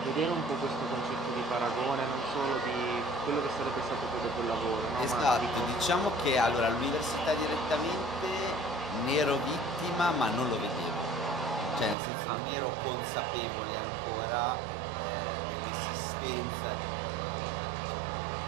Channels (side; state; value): left; drops out; at 12.0 s